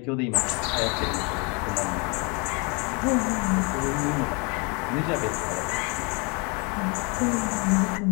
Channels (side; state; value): right; quieter; 31.7 dB